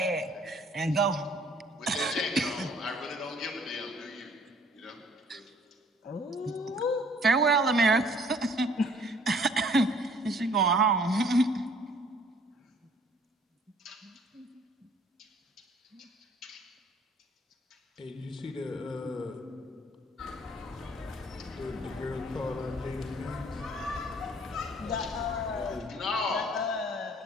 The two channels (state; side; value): normal; both; correlation 0.58